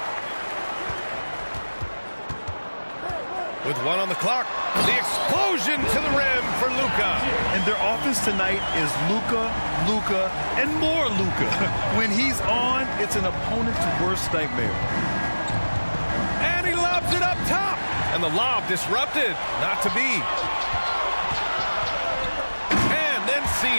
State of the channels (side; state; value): both; inverted; correlation -1.00